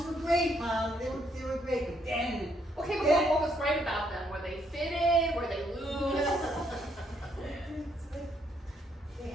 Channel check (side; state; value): both; normal; correlation 0.72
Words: were great, Mom. They were great. But then. Okay, but then- what was great about them? Were they fitted? Were they loose? They